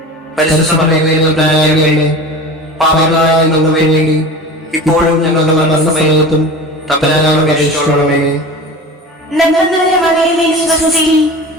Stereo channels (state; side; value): normal; both; correlation 0.34